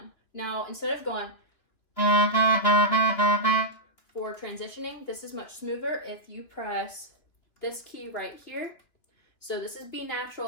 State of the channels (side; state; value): right; late; 3.2 ms